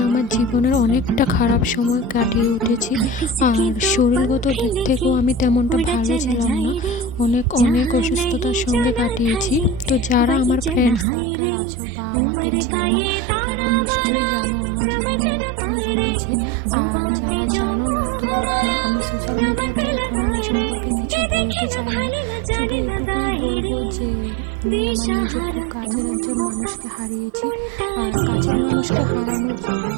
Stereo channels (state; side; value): drops out; left; at 11.1 s